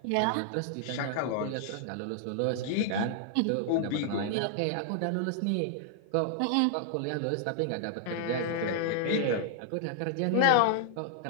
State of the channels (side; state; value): both; different; correlation -0.01